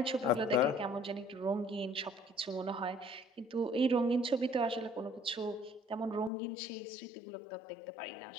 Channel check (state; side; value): drops out; right; at 6.3 s